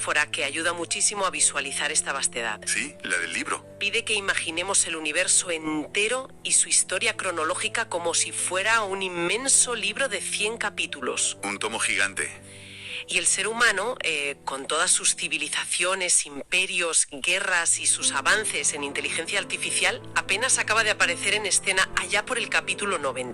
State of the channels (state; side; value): identical; both; correlation 1.00